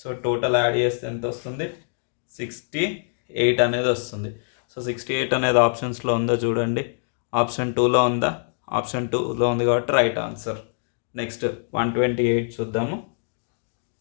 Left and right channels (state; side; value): silent; right; digital silence